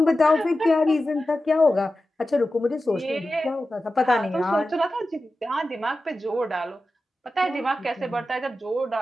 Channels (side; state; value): both; normal; correlation 0.93